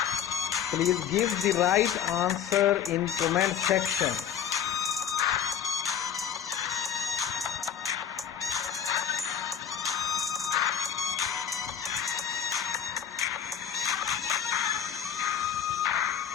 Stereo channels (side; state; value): right; quieter; 8.8 dB